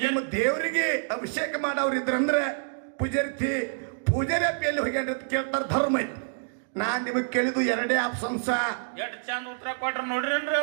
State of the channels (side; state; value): left; silent; digital silence